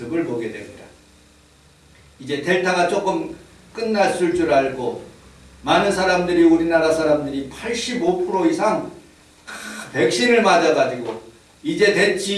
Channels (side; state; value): both; identical; correlation 1.00